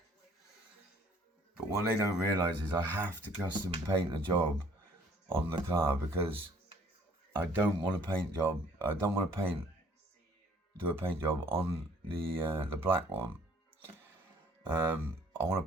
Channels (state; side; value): normal; both; correlation 0.58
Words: But what they don't realise is I have to custom paint a job on the car, because I don't want to do a paint job on the black one. I